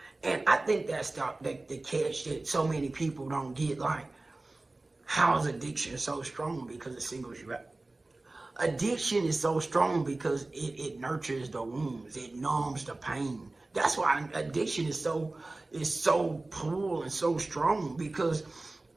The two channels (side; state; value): left; quieter; 3.0 dB